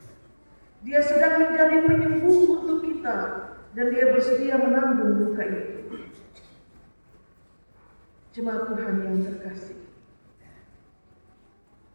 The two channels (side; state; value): both; inverted; correlation -1.00